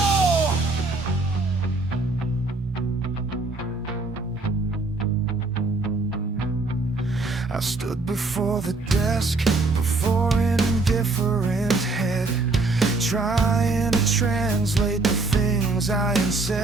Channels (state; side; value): quieter; left; 3.4 dB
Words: I stood before the desk, before an indifferent head, trying to translate the things I had